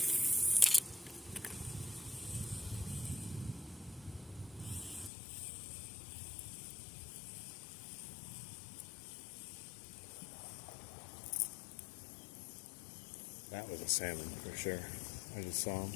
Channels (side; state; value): right; drops out; at 5.1 s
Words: That was a salmon for sure. I just saw him